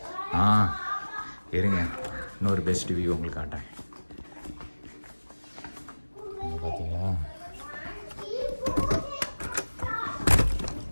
இருங்க, இன்னொரு பெஸ்ட் வியூ உங்களுக்கு காட்டுறேன். பார்த்தீங்களா?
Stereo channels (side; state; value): both; inverted; correlation -1.00